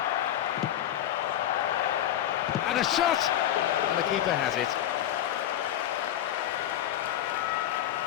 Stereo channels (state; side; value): quieter; right; 11.8 dB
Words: And a shot! And the keeper has it.